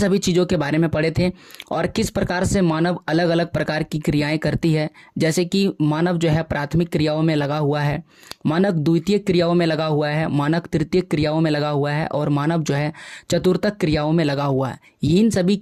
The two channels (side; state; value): both; identical; correlation 1.00